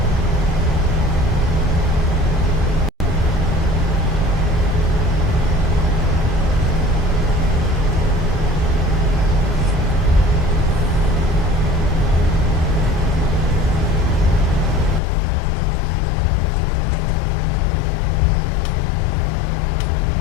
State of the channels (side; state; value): right; drops out; at 15.0 s